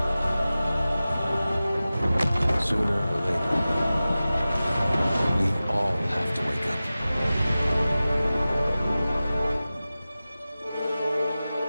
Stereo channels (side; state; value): both; inverted; correlation -0.96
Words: Sooner or later, we all have to wake up.